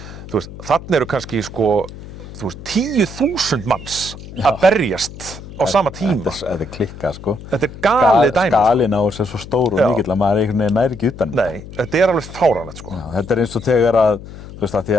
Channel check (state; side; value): noise; left; hum, 14 dB below the sound